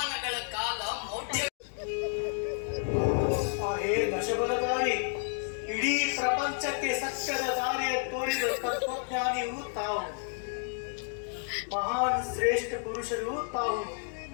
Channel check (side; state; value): right; silent; 57 dB below the other